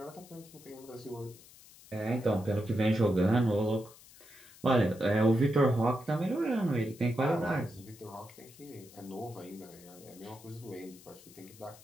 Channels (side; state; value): left; noise; hiss, 22 dB below the sound